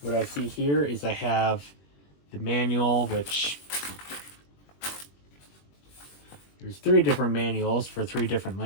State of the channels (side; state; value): right; late; 21 ms